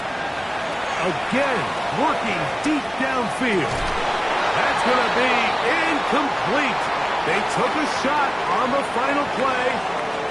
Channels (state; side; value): identical; both; correlation 1.00